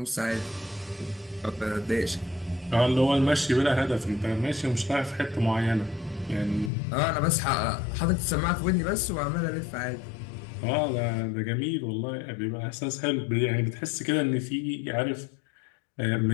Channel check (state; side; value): drops out; right; at 6.7 s